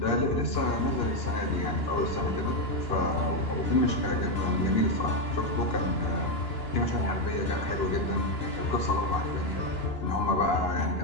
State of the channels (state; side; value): late; right; 2.9 ms